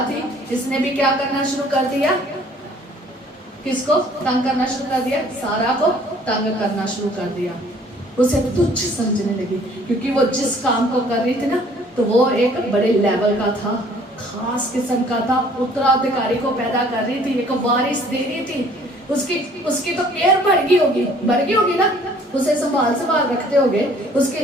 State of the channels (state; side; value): normal; both; correlation 0.56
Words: थी, इसने भी क्या करना शुरू कर दिया, किसको तंग करना शुरू कर दिया, सारा को तंग करना शुरू कर दिया। उसे तुच्छ समझने लगी, क्योंकि वो जिस काम को कर रही थी ना तो वो एक बड़े लेवल का था, खास किस्म का था, उत्तराधिकारी को पैदा कर रही थी, एक वारिस दे रही थी। उसकी तो केयर बढ़ गई होगी ना, उसे संभाल रखते होगे, उसके